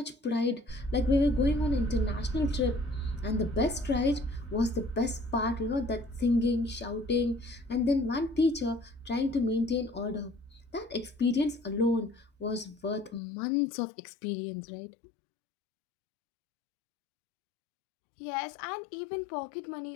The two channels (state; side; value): drops out; right; at 13.2 s